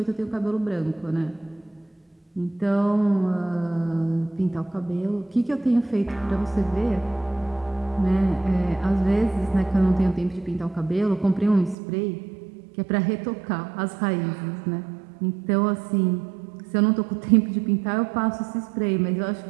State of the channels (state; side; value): drops out; left; at 11.8 s